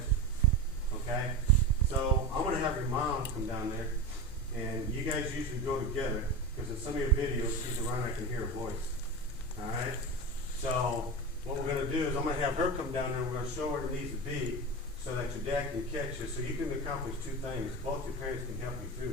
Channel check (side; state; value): both; normal; correlation 0.24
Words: Okay? So, I'm going to have your mom come down there, and you guys usually go together, because in some of your videos, she's around, I can hear her voice. Alright? So, what we're going to do is, I'm going to have her come down there, and we're going to show her where it needs to be, so that your dad can catch you, so you can accomplish two things. Both your parents can help you